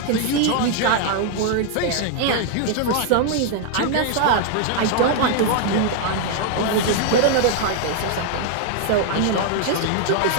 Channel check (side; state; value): both; different; correlation 0.00